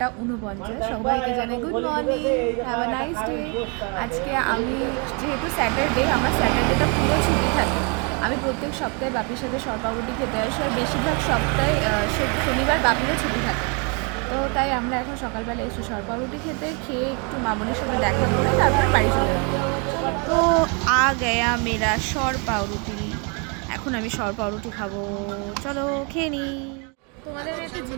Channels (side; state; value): left; quieter; 34.6 dB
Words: সবাইকে জানাই good morning, have a nice day. আজকে আমি যেহেতু স্যাটারডে, আমার স্যাটারডেটা পুরো ছুটি থাকে। আমি প্রত্যেক সপ্তাহে বাপির সাথে সরপাউরুটি খেতে আসি, আর বেশিরভাগ সপ্তাহে শনিবার বাপিরও ছুটি থাকে। তো তাই আমরা এখন সকালবেলা এসে সরপাউরুটি খেয়ে একটু মামনির সাথে দেখা করে তারপর বাড়ি চলে যাবো। তো আ গয়া মেরা সরপাউরুটি। এখন আমি সরপাউরুটি খাবো, চলো খেয়ে নিই। তোমাদের একটা